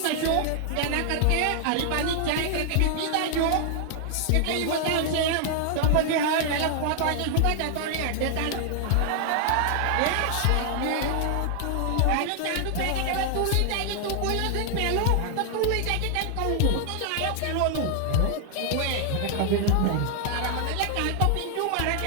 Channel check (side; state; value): both; different; correlation 0.00